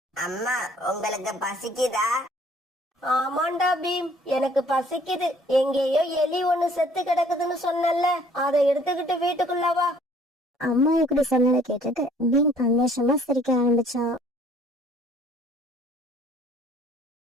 அம்மா, உங்களுக்கு பசிக்குதா? ஆமாண்டா பீம், எனக்கு பசிக்குது. எங்கேயோ எலி ஒண்ணு செத்து கிடக்குதுன்னு சொன்னல, அதை எடுத்துக்கிட்டு வீட்டுக்குள்ள வா. அம்மா இப்படி சொன்னதை கேட்டுட்டு பீம் சந்தோஷமா சிரிக்க ஆரம்பிச்சான்.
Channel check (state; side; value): normal; both; correlation 0.58